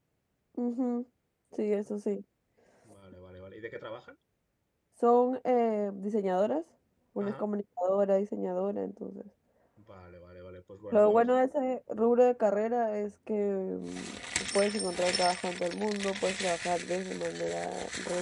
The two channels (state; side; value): identical; both; correlation 1.00